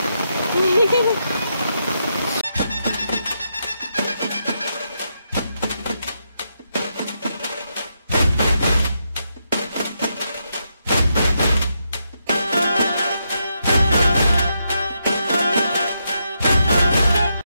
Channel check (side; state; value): both; inverted; correlation -0.82